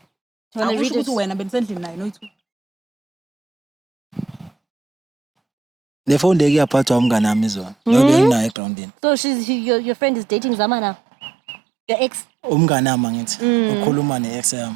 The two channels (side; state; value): left; drops out; at 8.6 s